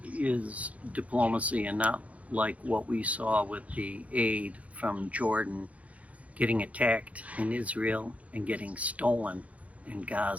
is diplomacy and not like what we saw with the aid from Jordan getting attacked in Israel and getting stolen in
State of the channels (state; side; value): late; left; 0.067 ms